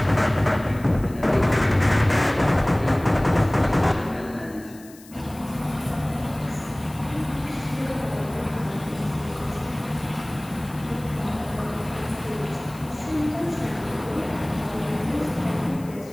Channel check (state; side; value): noise; left; hiss, 22 dB below the sound